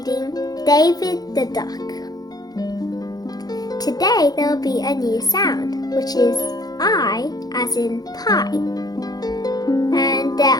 David the Duck. Today there will be a new sound, which is I as in pie. And there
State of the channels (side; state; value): right; late; 0.19 ms